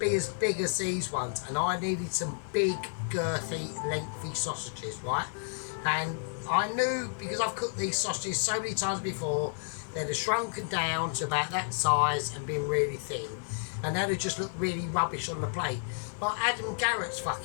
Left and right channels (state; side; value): silent; right; digital silence